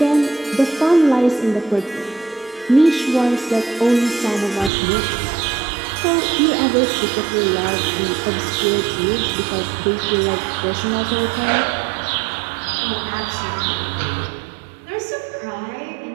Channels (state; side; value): drops out; left; at 4.7 s